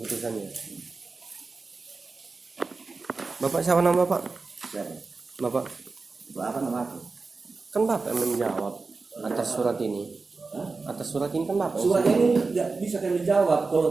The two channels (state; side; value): quieter; left; 4.1 dB